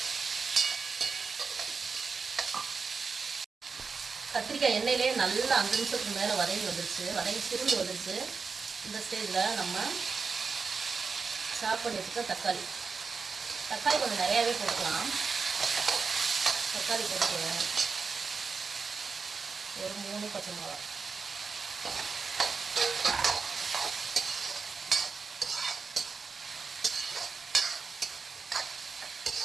கத்திரிக்காய் எண்ணெயிலே நல்லா 5 நிமிஷத்துக்கு மேலே வதங்கி வந்துருச்சு, வதங்கி சுருண்டு வந்துருச்சு. இந்த ஸ்டேஜில் நம்ம சாப் பண்ணி வச்சுக்க தக்காளி கொஞ்சம் நிறையாவே போட்டுக்கலாம். தக்காளி போட்டுக்குவேன். ஒரு 3 பச்சை மிளகா,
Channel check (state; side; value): quieter; left; 5.0 dB